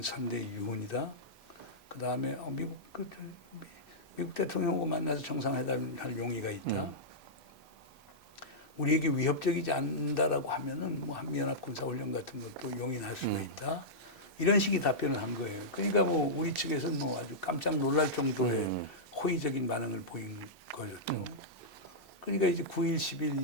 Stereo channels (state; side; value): normal; both; correlation -0.12